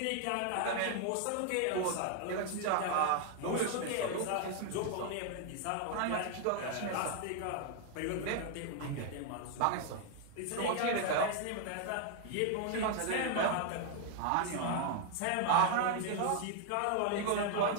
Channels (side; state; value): both; different; correlation 0.00